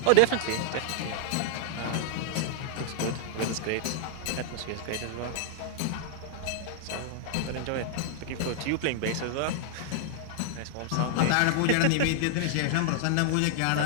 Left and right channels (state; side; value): different; both; correlation 0.00